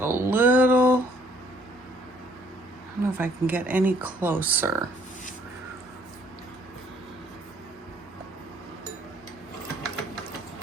a little, I don't know if I can get any closer.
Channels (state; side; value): normal; both; correlation 0.63